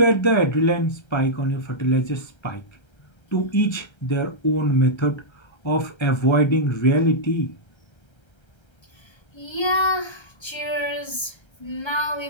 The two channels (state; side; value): late; right; 1.3 ms